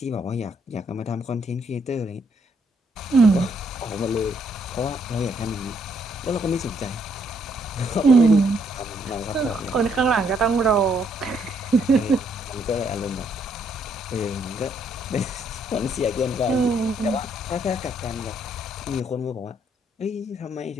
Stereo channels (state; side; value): normal; both; correlation 0.71